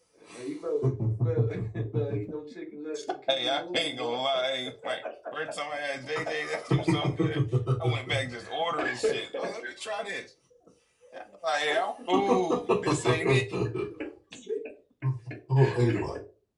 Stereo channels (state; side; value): identical; both; correlation 1.00